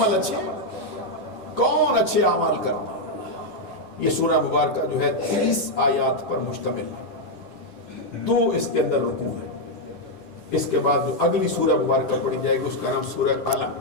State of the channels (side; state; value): right; late; 10 ms